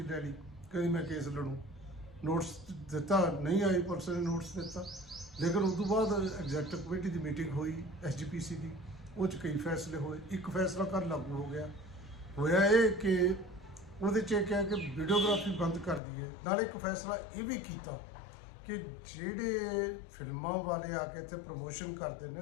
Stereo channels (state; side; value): drops out; right; at 16.0 s